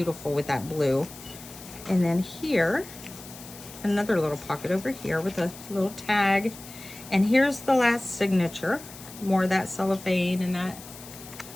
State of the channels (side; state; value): left; noise; hiss, 16 dB below the sound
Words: with that blue. And then here, another little pocket over here with a little tag. And here's the last signature. More of that cellophane and that.